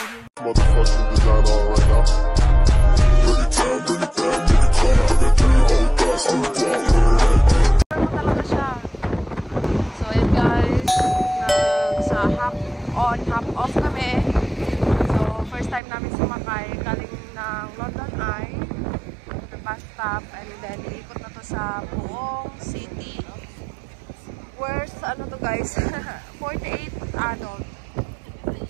motherfucking design on right now. Bring it down, bring it down, bring it down. I got 3 old guys on the block. Talaga siya. So yun guys, sa half on, half off kami. So first time namin sumakay galing ng London Eye to the bus stop, and then iikot na to sa buong city. Where's ano to guys? 48 adult.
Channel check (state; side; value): drops out; left; at 15.8 s